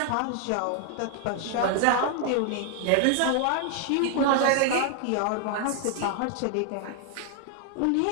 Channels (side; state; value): both; different; correlation 0.00